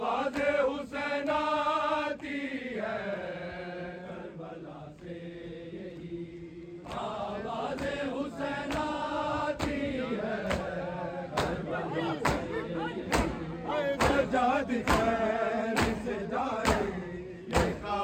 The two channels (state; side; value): identical; both; correlation 1.00